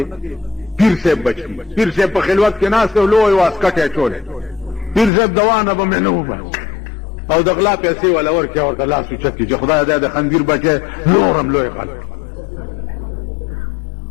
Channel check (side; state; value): right; drops out; at 5.1 s